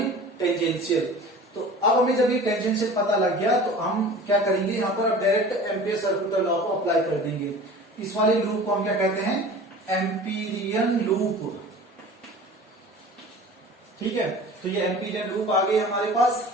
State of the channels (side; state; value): both; normal; correlation 0.41